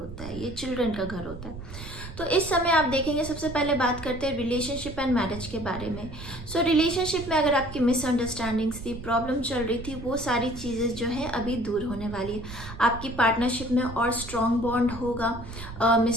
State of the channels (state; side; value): noise; right; rumble, 12 dB below the sound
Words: है, ये चिल्ड्रन का घर होता है। तो इस समय आप देखेंगे, सबसे पहले बात करते हैं रिलेशनशिप एंड मैरिज के बारे में। सो रिलेशनशिप में अगर आपकी मिसअंडरस्टैंडिंग्स थी, प्रॉब्लम चल रही थी, वो सारी चीज़ें जो है अभी दूर होने वाली है। आपकी पार्टनरशिप में और स्ट्रॉन्ग बॉन्ड होगा,